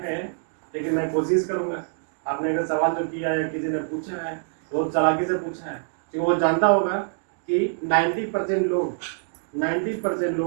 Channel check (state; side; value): silent; left; digital silence